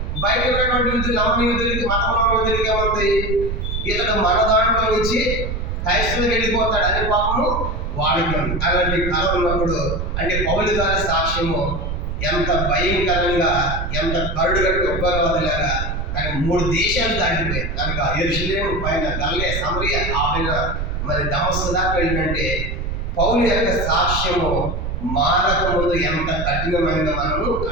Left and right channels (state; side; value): noise; right; rumble, 3 dB below the sound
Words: బయట ఉన్నటువంటి యూదులు, నమ్మని యూదులకి, మతంలో యూదులకి ఏముంది? ఇతడు మన దాంట్లో నుంచి క్రైస్తవులకు వెళ్ళిపోతాడు అనే పాపము వాడికి ఉంది. అలాంటి కళ ఉన్నప్పుడు అంటే పౌలు గారి సాక్ష్యము ఎంత భయంకరంగా, ఎంత కరుడుగట్టు ఉగ్రవాదులాగా కానీ 3 దేశాలు దాటిపోయాయి. కనుక యెరూషలేము పైన గలిలయ, సమరయ, ఆ పైన మరి దమస్కు దాకా వెళ్ళినంటే పౌలు యొక్క సాక్ష్యము మారక ముందు ఎంత కఠినమైనదో మనము